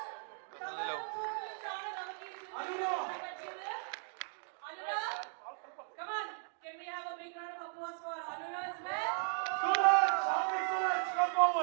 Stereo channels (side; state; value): left; silent; 53 dB below the other